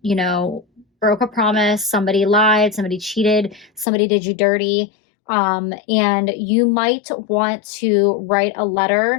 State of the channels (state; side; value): drops out; right; at 3.9 s